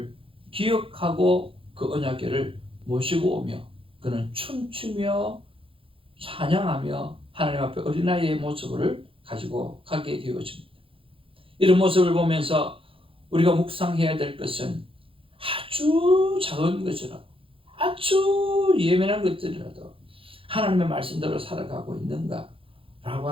기억하고 그 언약궤를 모시고 오며 그는 춤추며 찬양하며 하나님 앞에 어린아이의 모습을 가지고 가게 되어집니다. 이런 모습을 보면서 우리가 묵상해야 될 것은 아주 작은 것이라도, 아주 예민한 것들이라도 하나님의 말씀대로 살아가고 있는가 라고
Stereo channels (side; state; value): left; late; 0.26 ms